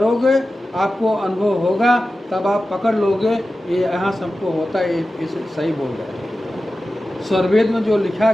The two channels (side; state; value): both; normal; correlation 0.94